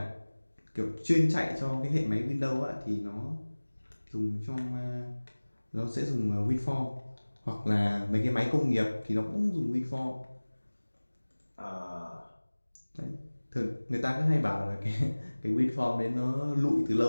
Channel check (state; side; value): inverted; both; correlation -1.00